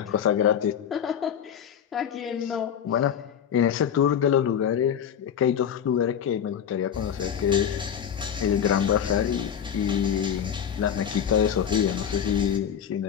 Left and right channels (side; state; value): right; quieter; 8.6 dB